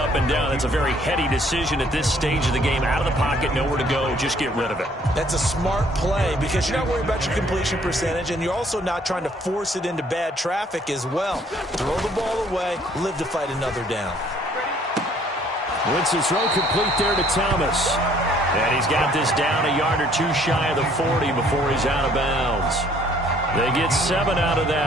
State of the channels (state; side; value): normal; both; correlation 0.61